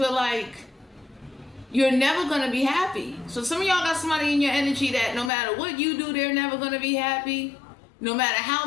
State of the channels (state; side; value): drops out; right; at 5.3 s